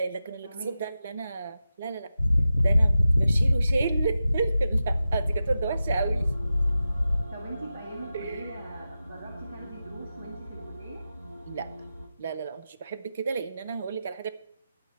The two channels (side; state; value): both; inverted; correlation -0.92